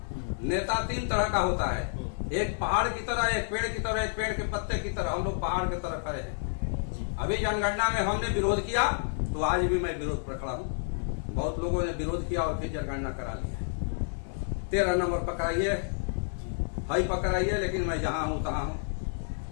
नेता 3 तरह का होता है, एक पहाड़ की तरह, एक पेड़ की तरह, एक पेड़ के पत्ते की तरह। हम लोग पहाड़ की तरह खड़े हैं। अभी जनगणना में हमने विरोध किया तो आज भी मैं विरोध पर खड़ा हूँ। बहुत लोगों ने विरोध किया और फिर जनगणना करा लिया। 13 नंबर पकड़ाइए, हाई पकड़ाइए, लेकिन मैं जहां हूं तहां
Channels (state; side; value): silent; right; 56 dB below the other